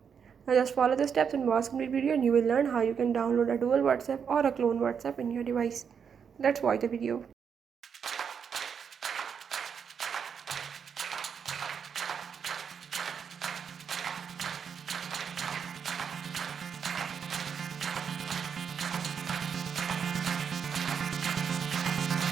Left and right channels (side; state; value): left; quieter; 7.0 dB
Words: Now just follow the steps and watch complete video and you will learn how you can download a dual WhatsApp or a clone WhatsApp in your device. Let's watch the video.